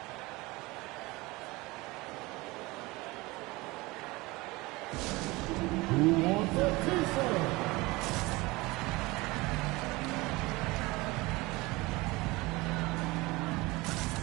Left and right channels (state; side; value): quieter; left; 22.3 dB